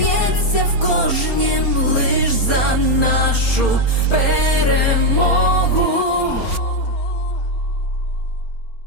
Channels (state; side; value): late; right; 4.3 ms